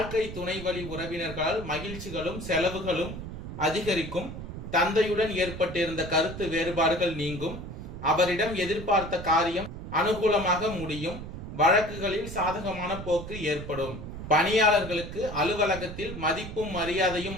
துணை வழி உறவினர்களால் மகிழ்ச்சிகளும் செலவுகளும் அதிகரிக்கும். தந்தையுடன் ஏற்பட்டிருந்த கருத்து வேறுபாடுகள் நீங்கும். அவரிடம் எதிர்பார்த்த காரியம் அனுகூலமாக முடியும். வழக்குகளில் சாதகமான போக்கு ஏற்படும். பணியாளர்களுக்கு அலுவலகத்தில் மதிப்பும் மரியாதையும்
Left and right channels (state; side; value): noise; right; rumble, 9 dB below the sound